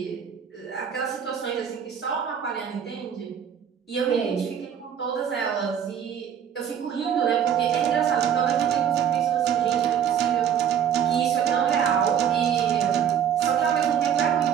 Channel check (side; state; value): left; quieter; 8.6 dB